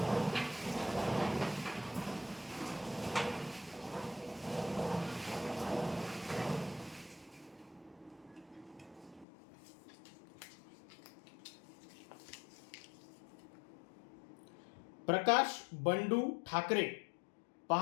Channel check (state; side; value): drops out; right; at 9.2 s